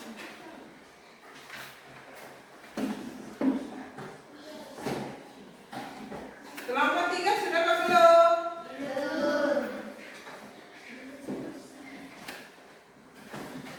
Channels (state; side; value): identical; both; correlation 1.00